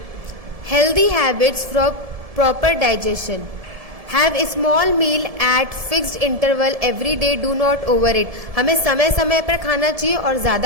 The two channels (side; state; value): left; late; 1.7 ms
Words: Healthy habits for proper digestion. Have a small meal at fixed interval every day, do not over it. हमें समय समय पर खाना चाहिए और